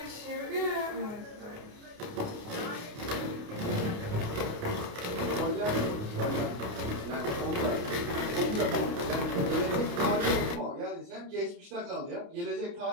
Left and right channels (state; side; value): late; left; 29 ms